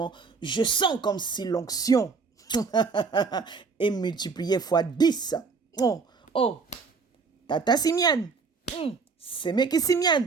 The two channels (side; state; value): left; quieter; 4.9 dB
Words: je sens comme si l'onction est multipliée fois 10. Oh, Tata Simian, c'est mec Simian,